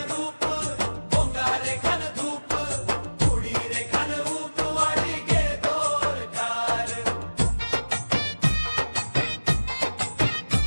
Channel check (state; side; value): inverted; both; correlation -1.00